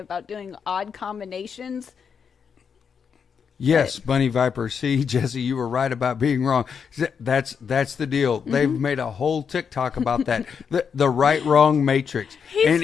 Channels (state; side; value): quieter; right; 6.6 dB